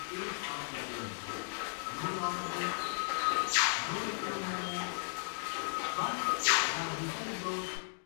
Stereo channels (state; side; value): silent; right; digital silence